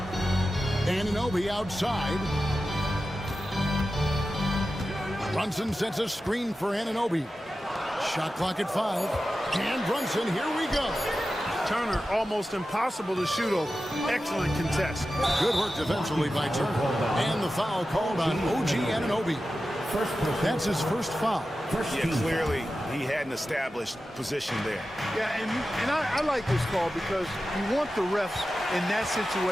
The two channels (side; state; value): both; normal; correlation 0.93